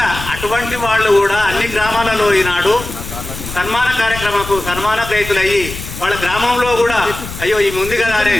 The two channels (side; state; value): left; noise; rumble, 10 dB below the sound